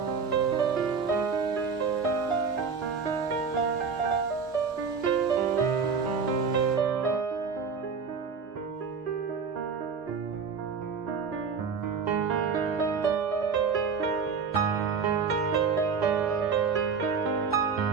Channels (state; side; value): quieter; left; 5.6 dB